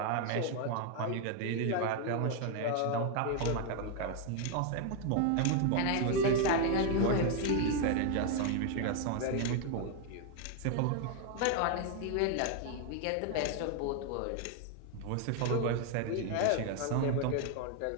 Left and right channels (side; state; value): both; different; correlation 0.01